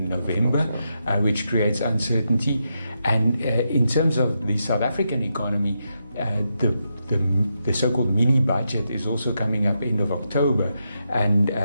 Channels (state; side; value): inverted; both; correlation -0.84